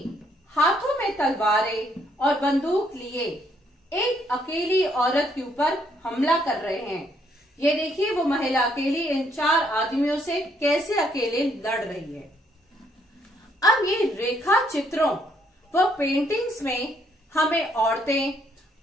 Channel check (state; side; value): normal; both; correlation 0.70